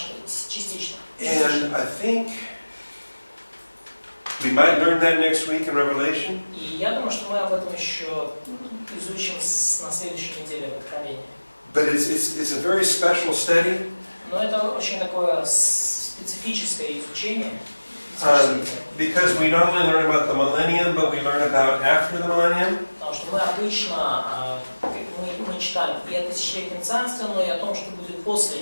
частично. And I think we might learn that next week in Revelation. И я думаю, что мы об этом еще изучим на следующей неделе в Откровении. But it's a very special study. Но это очень такое специфическое изучение. Because we not only learn about the millennium, but we learn about after the millennium. Потому что мы обычно мы читаем и о тысячелетнем царстве, но и о том, что будет после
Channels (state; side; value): inverted; both; correlation -1.00